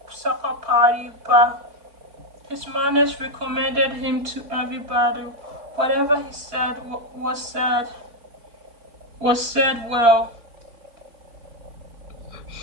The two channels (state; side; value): late; left; 4.5 ms